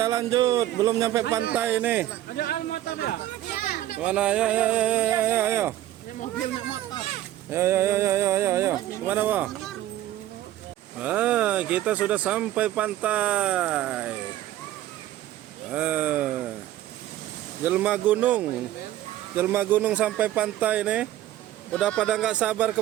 lanjut, belum nyampe pantai nih. Ada almotor ya? Mana? Ayo. Ini mobilnya motor. Ayo. Kemana, Wah? Kita sudah sampai pantai. Jelma gunung sampai pantai nih. Udah pada nggak sabar ke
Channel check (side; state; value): left; quieter; 13.6 dB